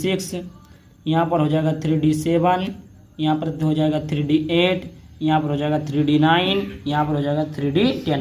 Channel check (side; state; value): both; identical; correlation 1.00